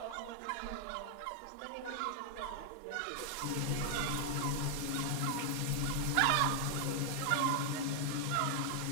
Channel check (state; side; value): different; both; correlation 0.00